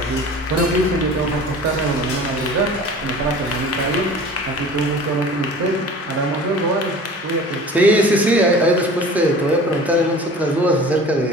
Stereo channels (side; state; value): both; normal; correlation 0.42